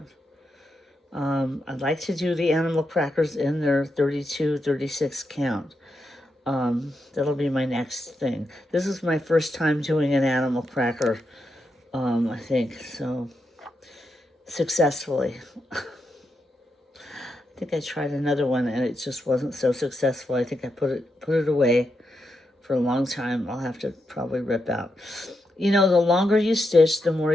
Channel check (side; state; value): both; normal; correlation 0.84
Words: I'd like to do the animal crackers in their 32, 36 count. That'll be my next thing. This is my first time doing an animal cracker, I think, so successfully. I think I tried another one and it just wasn't so successful. I think I put it away for a long time. I'll have to probably rip out. You know, the longer you stitch, the more